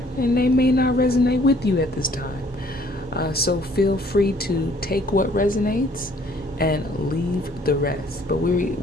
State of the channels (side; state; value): both; normal; correlation 0.60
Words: and they may not resonate with you at this time. So feel free to take what resonates and leave the rest. But